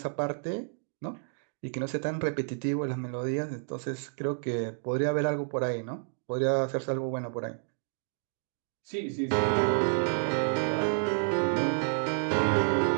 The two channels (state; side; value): silent; left; digital silence